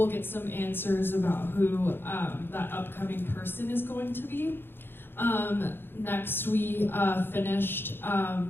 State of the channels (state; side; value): late; right; 0.10 ms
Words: get some answers about who that upcoming person is going to be. Next, we finished